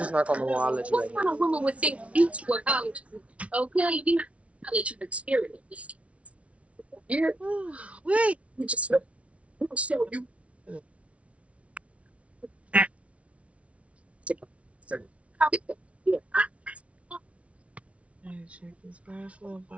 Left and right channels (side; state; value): left; late; 0.063 ms